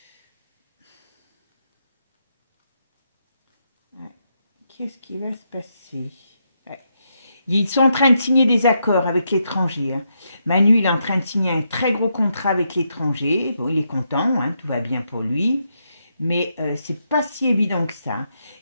Qu'est-ce qui va se passer? Ils sont en train de signer des accords avec l'étranger. Hein. Manu, il est en train de signer un très gros contrat avec l'étranger. Bon, il est content, hein, tout va bien pour lui. Mais c'est pas si évident que ça.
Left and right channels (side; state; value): both; inverted; correlation -0.81